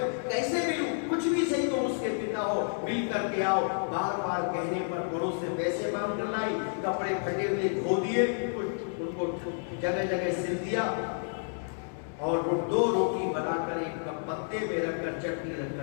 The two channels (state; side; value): silent; right; digital silence